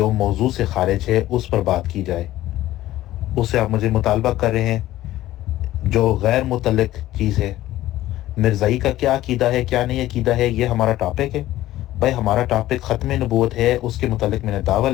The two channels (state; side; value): quieter; right; 15.0 dB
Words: موضوع سے خارج ہے اس پر بات کی جائے؟ اس سے آپ مجھے مطالبہ کر رہے ہیں جو غیر متعلق چیز ہے۔ مرزائی کا کیا عقیدہ ہے، کیا نہیں عقیدہ ہے، یہ ہمارا ٹاپک ہے؟ بھائی ہمارا ٹاپک ختم نبوت ہے، اس کے متعلق میں نے دعویٰ